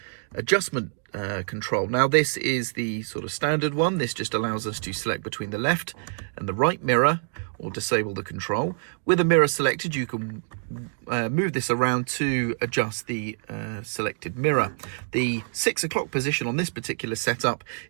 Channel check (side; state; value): left; silent; digital silence